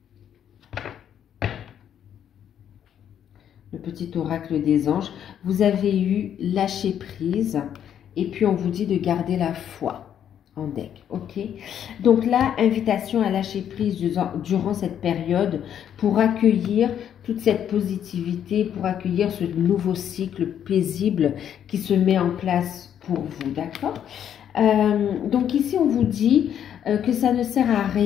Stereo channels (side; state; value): right; quieter; 9.5 dB